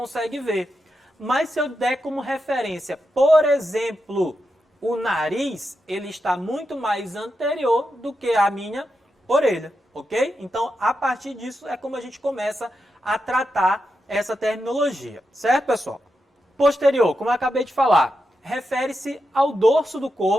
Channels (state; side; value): normal; both; correlation 0.87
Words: ver. Mas se eu der como referência, por exemplo, o nariz, ele está muito mais anterior do que a minha orelha, ok? Então, a partir disso é como a gente começa a tratar essa terminologia, certo, pessoal? Posterior, como eu acabei de falar, refere-se ao dorso do